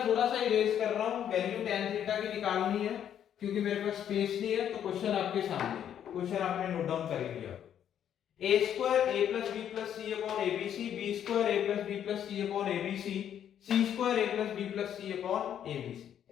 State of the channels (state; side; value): quieter; right; 9.7 dB